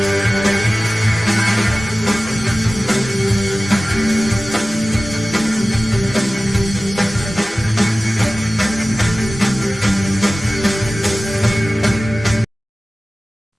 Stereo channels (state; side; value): normal; both; correlation 0.97